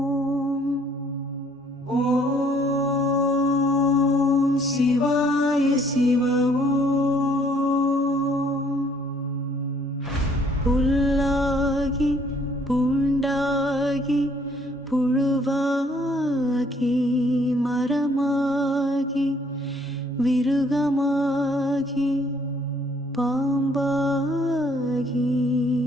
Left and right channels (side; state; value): both; normal; correlation 0.63